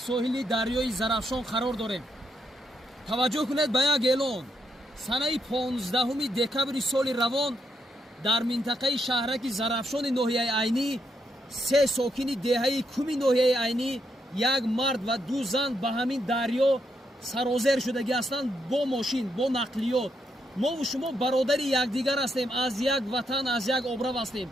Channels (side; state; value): both; normal; correlation 0.79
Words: соҳили дарёи Зарафшон қарор дорем. таваҷҷӯҳ кунед ба як эълон. санаи 15 декабри соли равон дар минтақаи шаҳраки Зарафшони ноҳияи Айнӣ 3 сокини деҳаи куми ноҳияи Айнӣ, як мард ва 2 зан ба ҳамин дарё сарозер шудагӣ ҳастанд бо мошин, бо нақлиёт. мову шумо бародари якдигар ҳастем, аз як ватан, аз як обрав ҳастем.